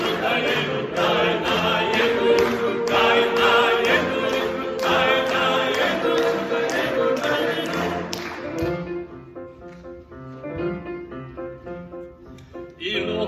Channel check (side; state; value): both; identical; correlation 1.00